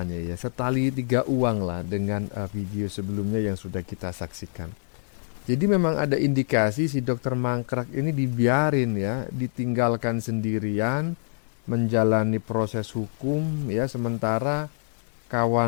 ya, setali tiga uang lah dengan video sebelumnya yang sudah kita saksikan. Jadi memang ada indikasi si dokter Mangkrak ini dibiarin ya, ditinggalkan sendirian menjalani proses hukum ya, sementara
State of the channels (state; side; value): silent; right; digital silence